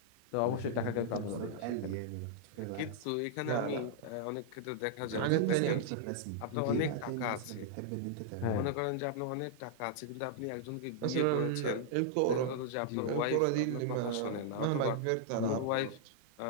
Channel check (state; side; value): different; both; correlation -0.01